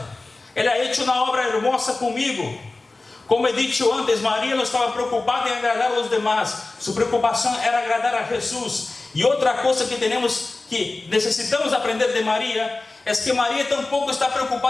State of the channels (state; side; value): quieter; right; 3.3 dB